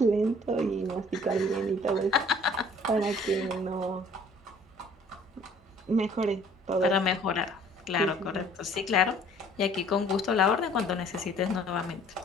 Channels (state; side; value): normal; both; correlation 0.54